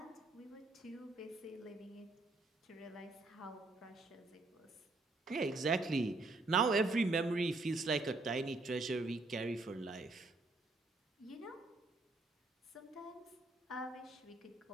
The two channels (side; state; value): left; quieter; 3.1 dB